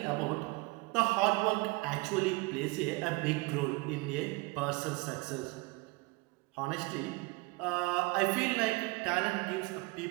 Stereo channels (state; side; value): quieter; left; 24.9 dB